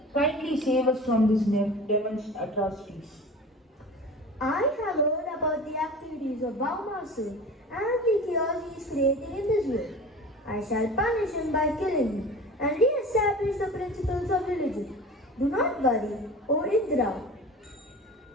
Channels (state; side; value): normal; both; correlation 0.37